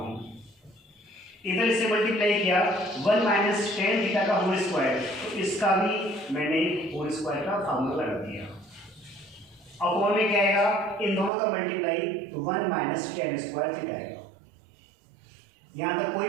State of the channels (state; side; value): drops out; left; at 11.3 s